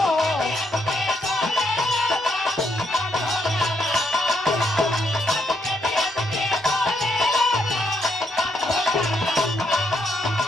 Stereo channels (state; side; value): normal; both; correlation 0.75